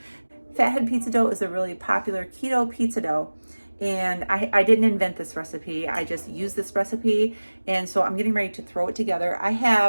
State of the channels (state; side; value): inverted; both; correlation -1.00